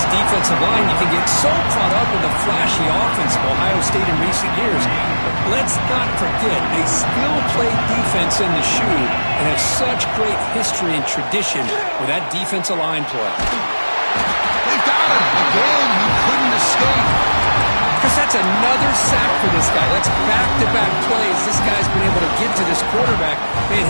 defensive line. You can get so caught up in the flashy offense of Ohio State in recent years. But let's not forget, they still play defense in the shoe and have such great history and tradition with that defensive line play. They got him. Again, he couldn't escape. Because that's another sack for this guy. That's back-to-back plays this guy's been able to get to this quarterback. Man,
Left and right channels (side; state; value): both; inverted; correlation -1.00